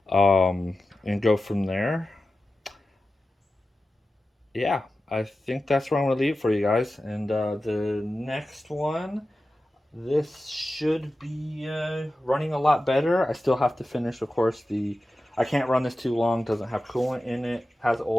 and go from there. Yeah, I think that's where I'm going to leave it for you guys. And the next one, this should be running a lot better. I still have to finish, of course, I can't run this too long. Doesn't have coolant in it. Has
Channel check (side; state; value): both; normal; correlation 0.94